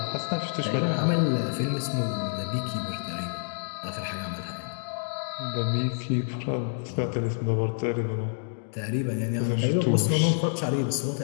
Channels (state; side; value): silent; right; digital silence